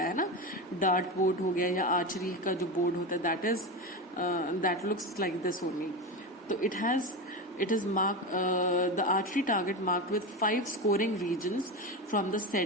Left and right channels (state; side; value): normal; both; correlation 0.20